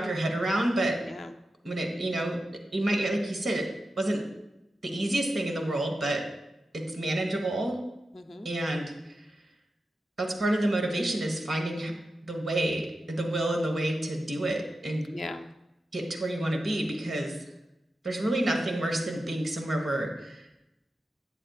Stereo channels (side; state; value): both; normal; correlation 0.91